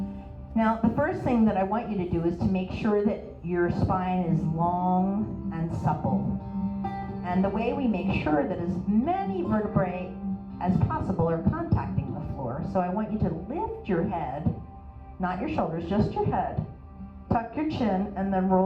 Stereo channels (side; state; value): both; identical; correlation 1.00